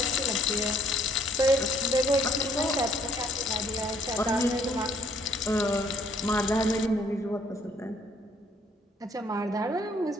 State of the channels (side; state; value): both; normal; correlation 0.64